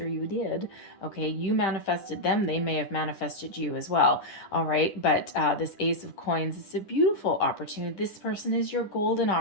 you did. Okay, you manifested them. They may have manifested you as well. All right, but this Ace of Coins is a beautiful opportunity. This person is your golden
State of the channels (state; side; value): late; right; 10 ms